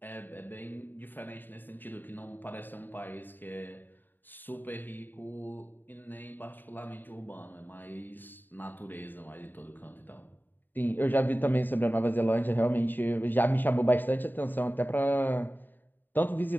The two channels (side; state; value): right; late; 0.091 ms